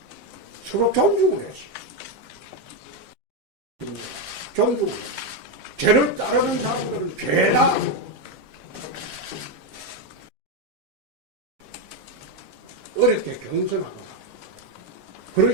서로 존중을 했어요. 존중을 했어요. 죄를 따르는 사람들은 죄다 어렵게 경선하거나 그런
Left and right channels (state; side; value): late; left; 7.5 ms